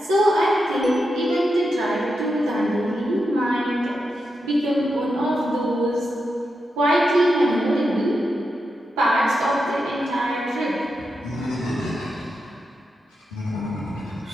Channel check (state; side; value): normal; both; correlation 0.87